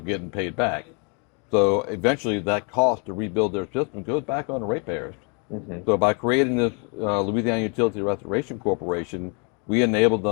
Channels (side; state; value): right; quieter; 36.2 dB